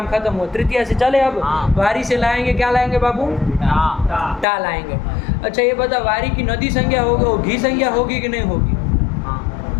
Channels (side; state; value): right; drops out; at 4.5 s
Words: खत्म हो। तृतीया से चले अब। हाँ। वारी से लाएंगे, क्या लाएंगे बाबू? टा। टा लाएंगे। अच्छा ये बता, वारी की नदी संज्ञा होगी, वो घी संज्ञा होगी कि नहीं होगी?